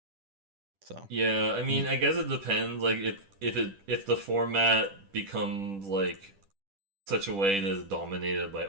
So, Yeah, I mm, mean, I guess it depends. Like, if the format becomes like such a way that is dominated by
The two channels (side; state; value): left; late; 10 ms